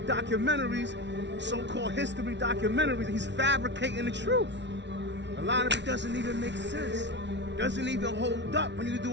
documentaries, so-called history documentaries. He's fabricating the truth. A lot of it doesn't even make sense. Doesn't even hold up when you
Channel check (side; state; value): left; late; 0.51 ms